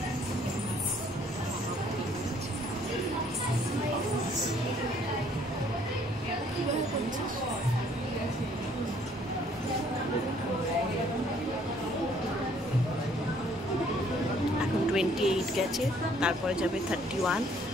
এখন 28 গেছে, তারপরে যাবে 31,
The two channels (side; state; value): both; normal; correlation 0.62